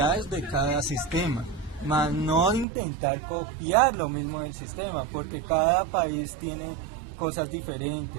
de cada sistema, más no intentar copiar lo mismo del sistema, porque cada país tiene cosas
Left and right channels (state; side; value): drops out; left; at 2.7 s